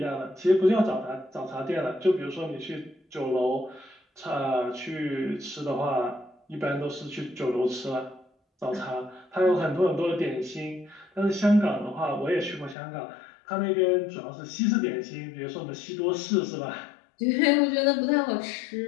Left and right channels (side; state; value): right; drops out; at 12.8 s